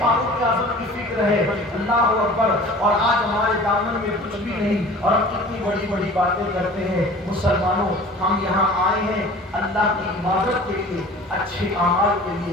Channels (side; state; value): both; normal; correlation 0.43